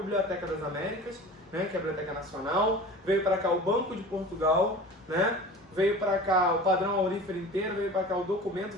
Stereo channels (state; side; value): normal; both; correlation 0.38